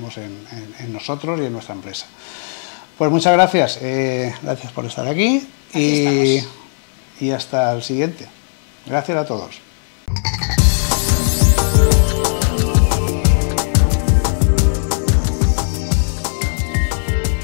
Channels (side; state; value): right; silent; 60 dB below the other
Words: en nosotros y en nuestra empresa. Pues muchas gracias, gracias por estar aquí. Aquí estamos. Y hasta el siguiente. Gracias a todos.